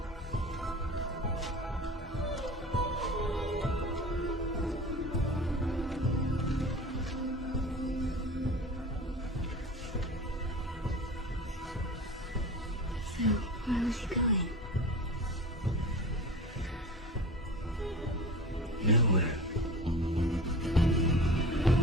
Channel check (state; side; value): normal; both; correlation 0.35